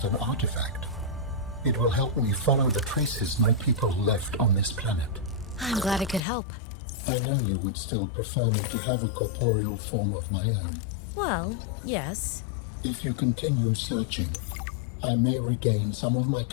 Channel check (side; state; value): right; drops out; at 6.2 s